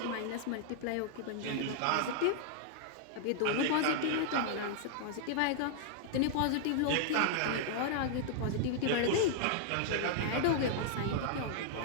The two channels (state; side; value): different; both; correlation -0.01